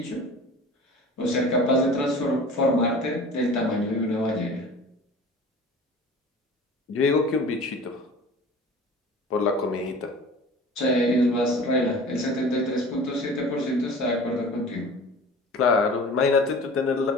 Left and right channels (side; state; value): both; normal; correlation 0.40